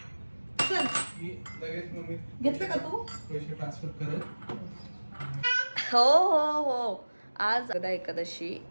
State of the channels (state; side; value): inverted; both; correlation -1.00